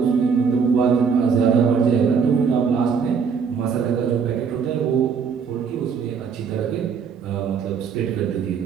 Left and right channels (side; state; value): left; quieter; 6.2 dB